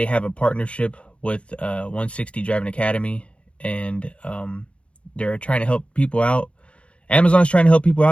have a partnership with 160 Driving Academy, and they're trying to help people out. Amazon's trying to help people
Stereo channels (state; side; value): late; right; 0.060 ms